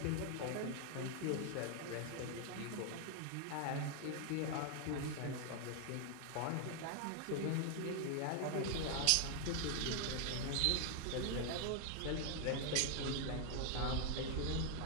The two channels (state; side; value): different; both; correlation 0.00